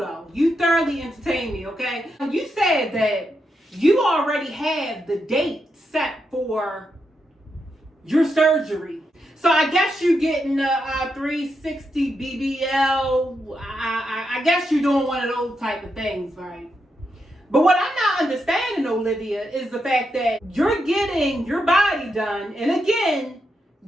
You thoroughly entertained me, okay? You said that you already have the date set for your surgery. So I guess you're getting a 360 BBL. I guess you're doing one of those type of things, right? But what I'm not understanding, Olivia, is the fact that you're getting your body done. And again,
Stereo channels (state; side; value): normal; both; correlation 0.84